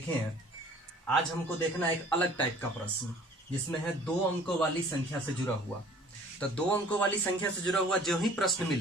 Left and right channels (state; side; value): normal; both; correlation 0.52